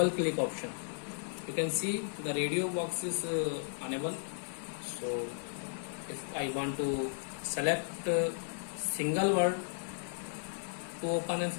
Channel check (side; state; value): right; silent; digital silence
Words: click option. You can see the radio box is unable. So if I want to select single word to open a